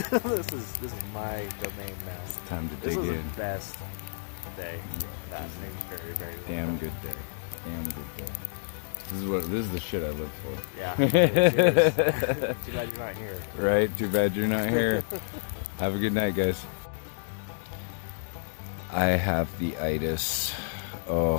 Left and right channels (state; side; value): silent; right; digital silence